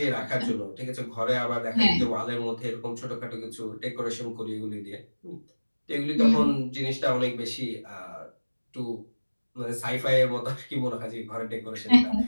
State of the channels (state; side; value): inverted; both; correlation -1.00